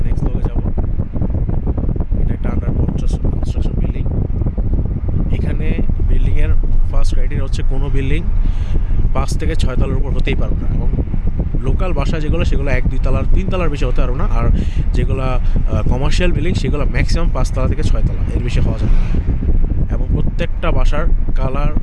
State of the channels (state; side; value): identical; both; correlation 1.00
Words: নেক্সট ব্লগে যাব। এটা একটা আন্ডার কনস্ট্রাকশন বিল্ডিং। এখানে বিল্ডিংয়ের ফার্স্ট ক্রাইটেরিয়া হচ্ছে কোনো বিল্ডিং 5 থেকে 6 তলার উপর হতেই পারবে না। এবং লোকাল বাসা যেগুলো, সেগুলো 1-2 তলার 3 তলার বেশি হতে পারবে না। আর যেগুলো কমার্শিয়াল বিল্ডিং, সেগুলো ম্যাক্সিমাম 5 তলা থেকে 6 তলা, এর বেশি হওয়া যাবে না। এবং প্রত্যেকটা বাসার কালার